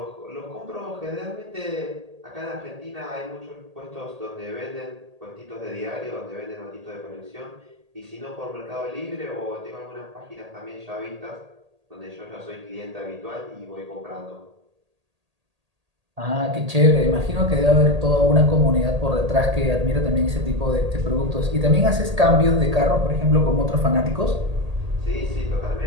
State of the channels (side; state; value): left; late; 1.8 ms